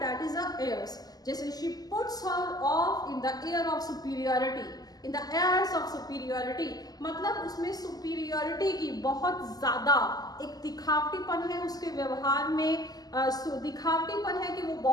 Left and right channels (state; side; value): late; right; 0.18 ms